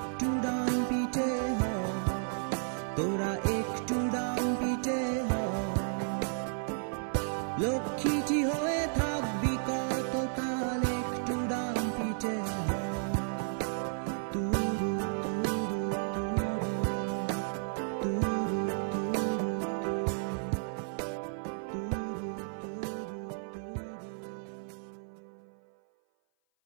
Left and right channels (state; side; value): silent; left; 56 dB below the other